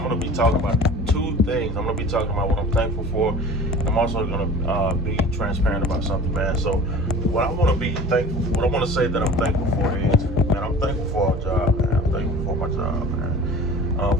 going to be talking about two things. I'm going to be talking about what I'm thankful for. I'm also going to be transparent about something, man. So, what I want to be thankful for, what I want to say that I'm thankful for is, man, I'm thankful for our job, man. I'm thankful for my job, man.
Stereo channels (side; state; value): both; normal; correlation 0.41